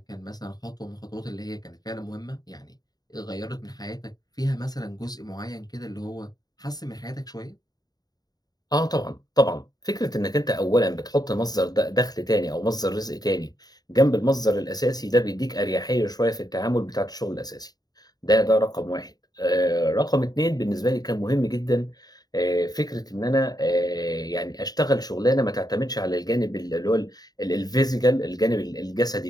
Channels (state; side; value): late; right; 0.19 ms